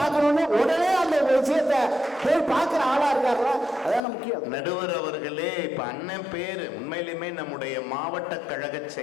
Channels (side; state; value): right; drops out; at 4.0 s